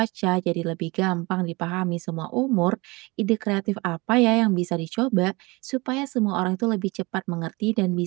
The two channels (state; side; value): quieter; left; 24.8 dB